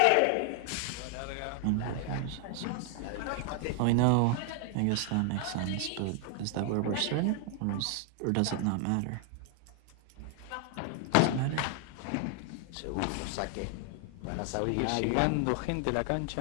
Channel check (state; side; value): different; both; correlation 0.00